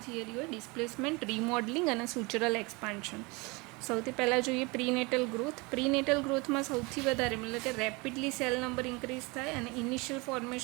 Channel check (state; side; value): quieter; left; 26.5 dB